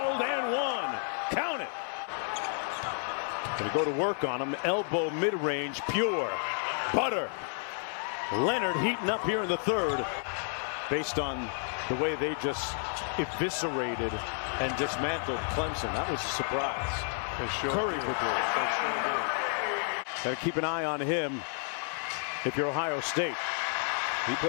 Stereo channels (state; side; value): silent; right; 57 dB below the other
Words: and one. Count it. Gonna go to work on him. Elbow mid-range, pure. Butter. Leonard heating up here in the third. Based on the way they just eviscerated and dismantled Clemson. That was a surprise. Curry would do it. Got to keep an eye on him if you're Ohio State. He